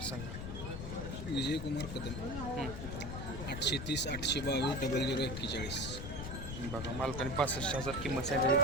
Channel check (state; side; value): noise; left; rumble, 6 dB below the sound